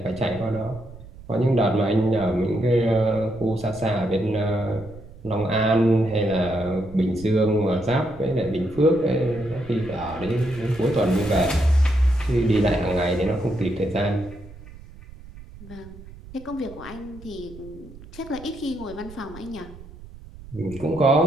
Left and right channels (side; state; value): right; noise; rumble, 18 dB below the sound